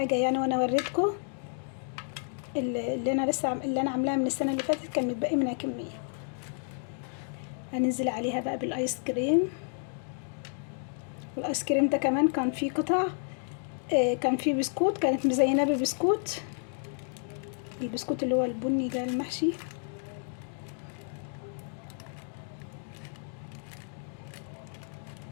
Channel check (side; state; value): right; silent; 57 dB below the other